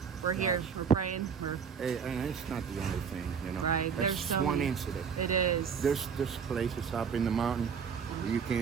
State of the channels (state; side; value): quieter; left; 6.6 dB